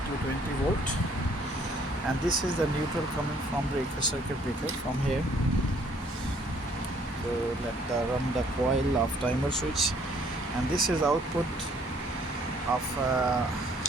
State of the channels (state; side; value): normal; both; correlation 0.62